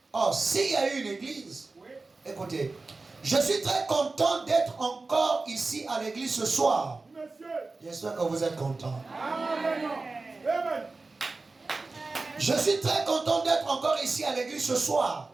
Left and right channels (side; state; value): left; quieter; 3.6 dB